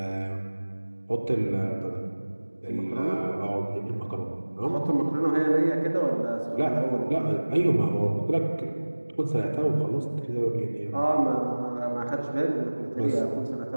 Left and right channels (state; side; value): inverted; both; correlation -1.00